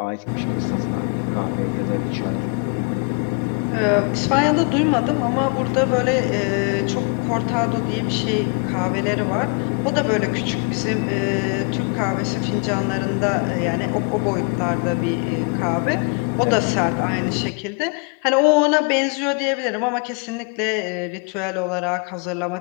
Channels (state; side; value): quieter; right; 37.8 dB